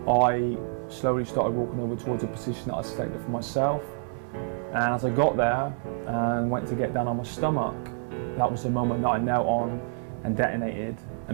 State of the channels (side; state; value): left; silent; digital silence